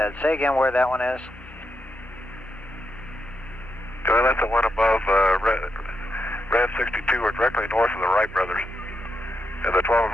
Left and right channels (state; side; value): normal; both; correlation 0.83